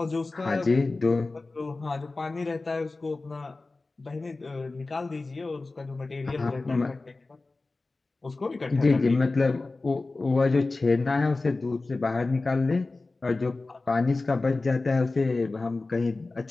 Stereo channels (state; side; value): quieter; right; 3.4 dB